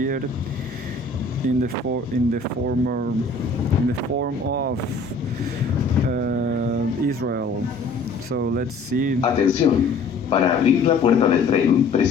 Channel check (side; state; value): right; quieter; 3.8 dB